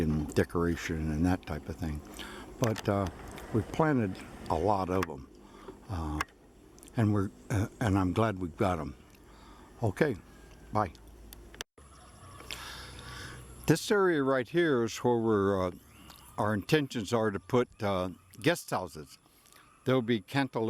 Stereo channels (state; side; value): identical; both; correlation 1.00